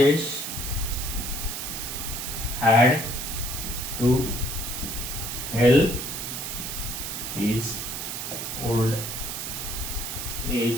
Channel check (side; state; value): right; noise; hiss, 5 dB below the sound